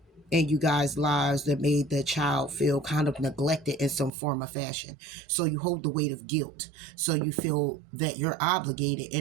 In you guys' lives that made the child feel kind of neglected in some form or fashion. So you hold the weight of guilt. So you feel that you're obligated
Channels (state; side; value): drops out; left; at 4.1 s